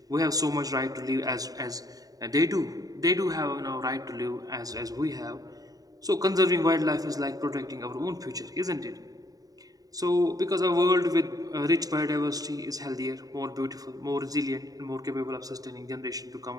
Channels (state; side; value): late; left; 0.18 ms